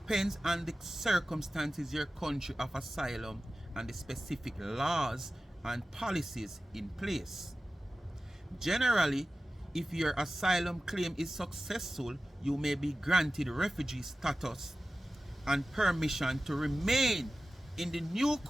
on the circumstances, your country of asylum, and the specific laws and policies in place. Generally, if your asylum claim is successful, you may be granted refugee status and permission to remain in the new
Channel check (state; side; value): normal; both; correlation 0.94